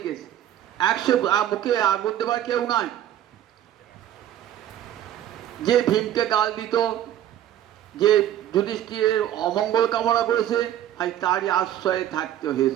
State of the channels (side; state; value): left; quieter; 11.6 dB